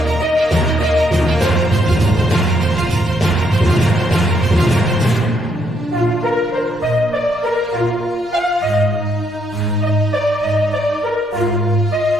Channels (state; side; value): normal; both; correlation 0.74